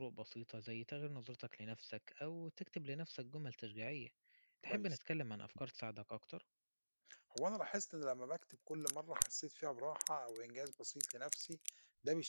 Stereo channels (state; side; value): inverted; both; correlation -1.00